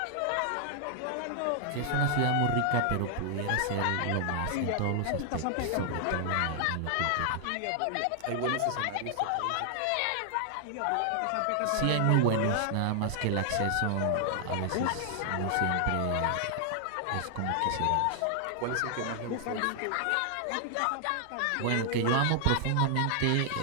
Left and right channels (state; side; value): different; both; correlation 0.00